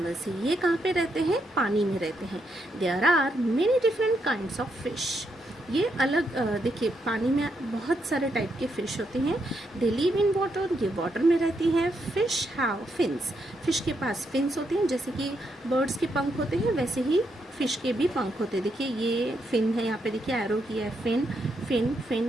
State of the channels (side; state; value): both; normal; correlation 0.79